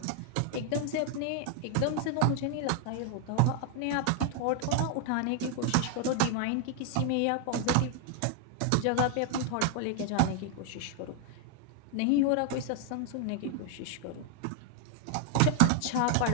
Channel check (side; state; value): both; different; correlation 0.00